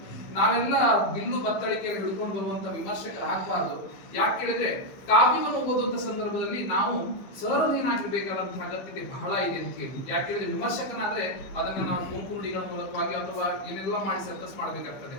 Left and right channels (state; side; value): late; right; 15 ms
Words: ನಾವೆಲ್ಲ ಬಿಲ್ಲು ಬತ್ತಳಿಕೆಯಲ್ಲಿ ಹಿಡ್ಕೊಂಡು ಬರುವಂತ ವಿಮರ್ಶಕರು ಆಗ್ಬಾರ್ದು. ಯಾಕೆ ಹೇಳಿದ್ರೆ ಕಾವ್ಯವನ್ನು ಓದುವಂತ ಸಂದರ್ಭದಲ್ಲಿ ನಾವು ಸಹೃದಯನಾಗಿರ್ಬೇಕಾದಂತಹ ಅಗತ್ಯತೆ ಬಹಳ ಇದೆ ಅಂತ ಹೇಳಿ. ಯಾಕೆ ಹೇಳಿದ್ರೆ ವಿಮರ್ಶಕನಾದ್ರೆ ಅದನ್ನ ನಾವು ಗುಂಪು ನುಡಿಗಳ ಮೂಲಕವಾಗಿ ಅಥವಾ ಏನೆಲ್ಲ ಮಾಡಿ ಸರ್ಕಸ್ ಮಾಡಬೇಕಾಗ್ತದೆ.